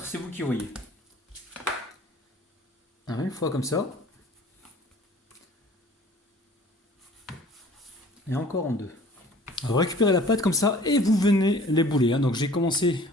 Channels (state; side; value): normal; both; correlation 0.50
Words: c'est vous qui voyez. Alors, une fois comme ça. Et encore en 2. Vous récupérez la pâte comme ça et vous venez l'ébouler. Donc j'ai commencé